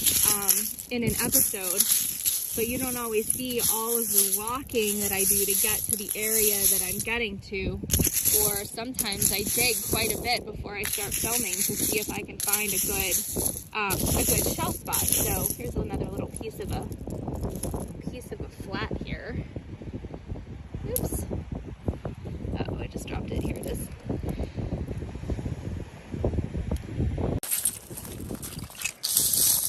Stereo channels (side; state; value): both; identical; correlation 1.00